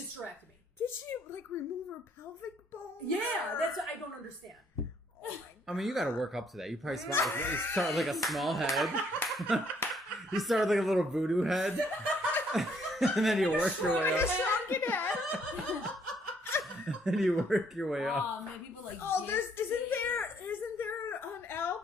Did she like remove her pelvic bone? Yeah, that's what I don't understand. I mean, you got to work up to that. You probably start with like a small head. You start with like a little voodoo head, and then you work your way Like a up. shrunken head. And you work your way up. Oh, man, people like. Oh, this. isn't there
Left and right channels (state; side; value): normal; both; correlation 0.67